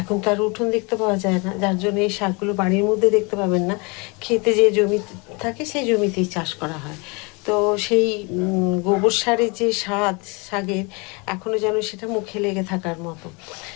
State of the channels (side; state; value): right; quieter; 29.5 dB